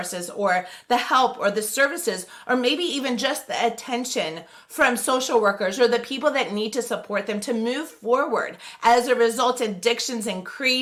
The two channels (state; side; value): identical; both; correlation 1.00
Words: or the help or the services or maybe even just the attention from social workers or the people that need to support them to move forward. As a result, addictions